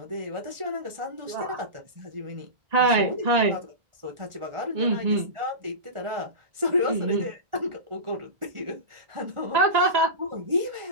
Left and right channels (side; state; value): left; late; 1.4 ms